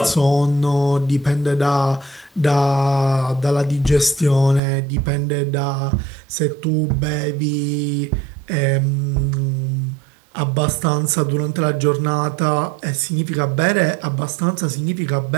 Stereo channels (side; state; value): left; drops out; at 4.6 s